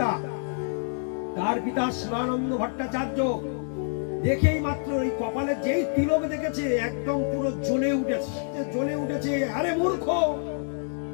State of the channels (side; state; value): right; silent; 60 dB below the other